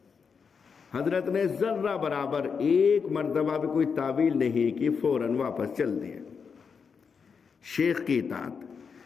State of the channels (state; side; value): quieter; right; 5.9 dB